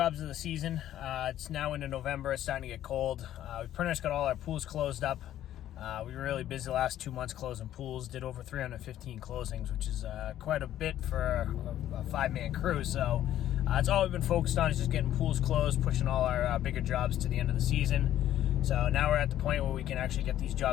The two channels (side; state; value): right; quieter; 12.2 dB